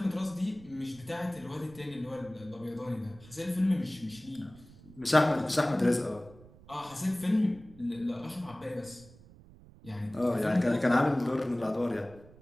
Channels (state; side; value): noise; right; rumble, 22 dB below the sound